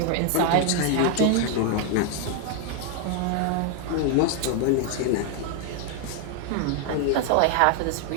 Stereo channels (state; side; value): different; both; correlation 0.00